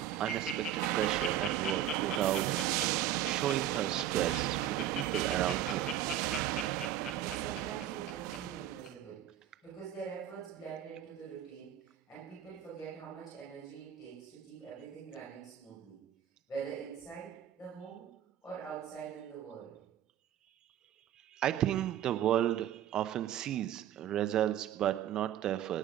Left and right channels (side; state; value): left; quieter; 10.9 dB